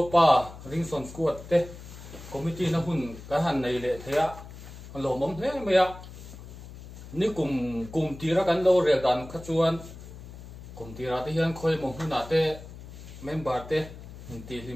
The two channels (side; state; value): left; noise; hum, 14 dB below the sound